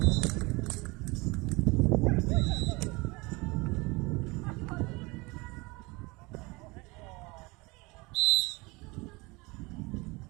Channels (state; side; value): quieter; left; 25.0 dB